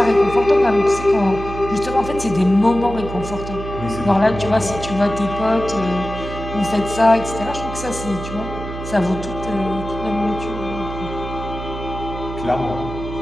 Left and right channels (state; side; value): noise; right; hum, 9 dB below the sound